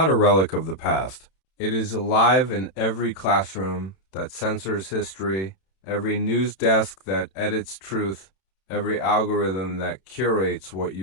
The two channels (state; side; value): late; right; 31 ms